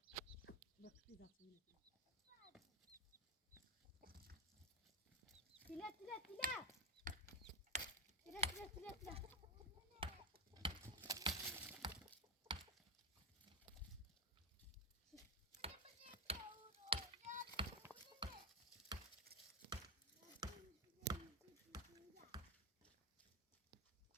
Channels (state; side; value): normal; both; correlation 0.13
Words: Bak bir daha söyle. Tila. Tila.